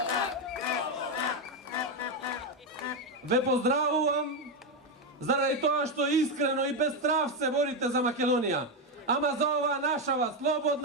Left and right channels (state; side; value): normal; both; correlation 0.07